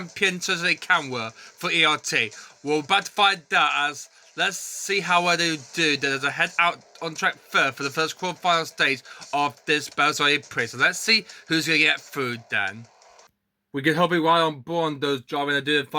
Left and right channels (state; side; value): identical; both; correlation 1.00